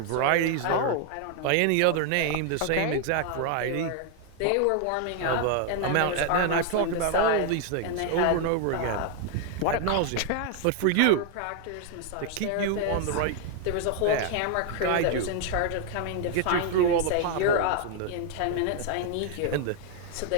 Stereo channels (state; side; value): different; both; correlation 0.00